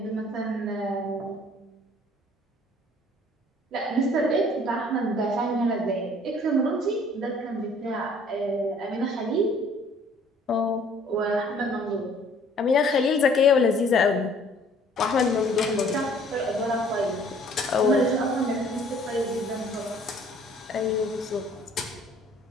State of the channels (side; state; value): both; normal; correlation 0.56